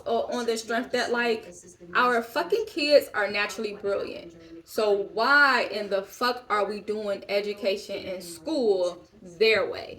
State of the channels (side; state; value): both; identical; correlation 1.00